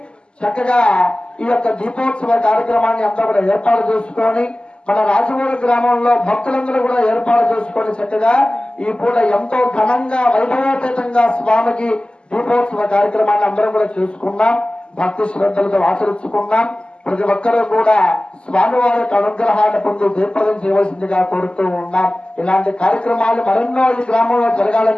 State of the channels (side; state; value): right; late; 0.051 ms